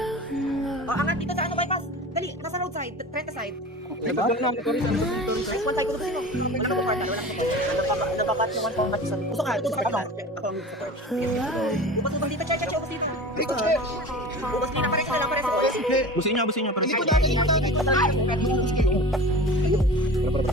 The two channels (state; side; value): normal; both; correlation 0.35